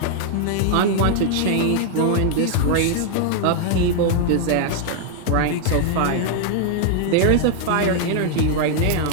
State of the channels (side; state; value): both; different; correlation 0.00